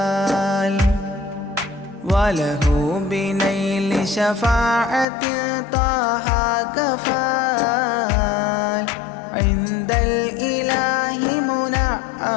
وله بنيل شفاعة طه كفال عند الإله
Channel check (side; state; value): right; drops out; at 5.1 s